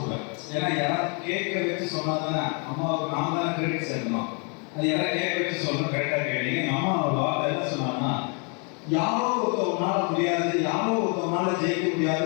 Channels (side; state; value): right; quieter; 36.6 dB